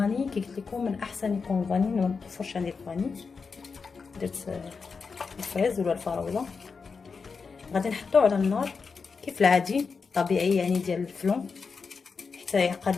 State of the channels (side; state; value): right; quieter; 5.1 dB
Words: كي قلت لكم من احسن يكون الفاني، ما متوفرش عندي الفاني. درت الفريز ولا الفراوله. غادي نحطو على النار كيف العادي طبيعي يعني ديال الفلون حتى